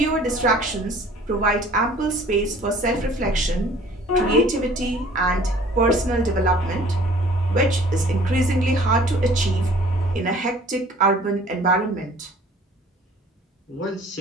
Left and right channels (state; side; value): normal; both; correlation 0.51